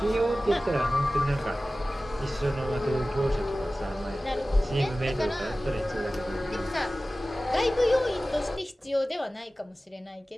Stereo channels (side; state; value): both; normal; correlation 0.96